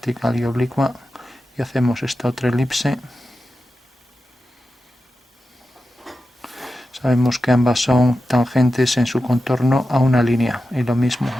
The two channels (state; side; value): normal; both; correlation 0.92